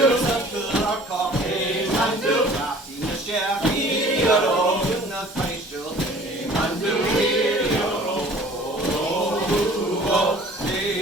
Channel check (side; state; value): both; normal; correlation 0.49